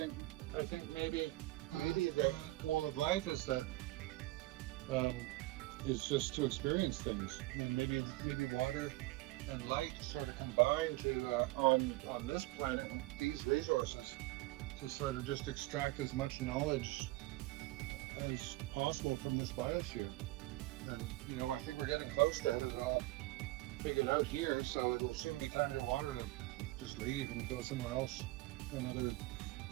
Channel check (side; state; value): left; quieter; 19.5 dB